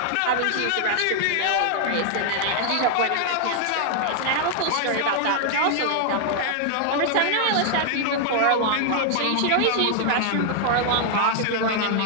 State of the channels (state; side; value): different; both; correlation 0.00